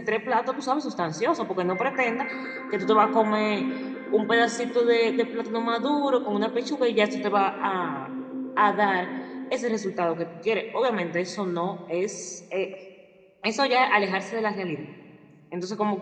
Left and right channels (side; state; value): both; identical; correlation 1.00